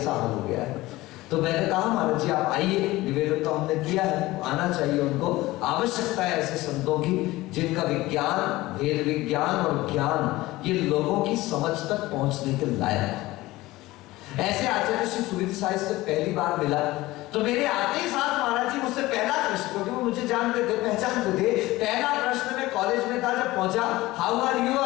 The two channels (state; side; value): quieter; right; 18.6 dB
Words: हाल हो गया है। तो मैंने कहा महाराज जी आप आइए, निवेदन तो हमने किया है, आना चाहिए उनको, आवश्यकता है ऐसे संतों की जिनका विज्ञान, वेद विज्ञान और ज्ञान ये लोगों की समझ तक पहुंचने के लायक। ऐसे आचार्य श्री सुविधि साहिब से पहली बार मिला तो मेरे आते ही साथ महाराज जी मुझसे पहला प्रश्न, क्योंकि वो मुझे जानते थे, पहचानते थे, पहला प्रश्न मैं कॉलेज में था जब पहुंचा, हाउ आर यू